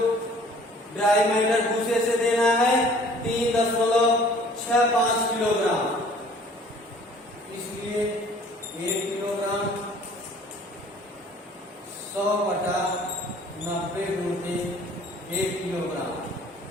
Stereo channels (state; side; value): normal; both; correlation 0.52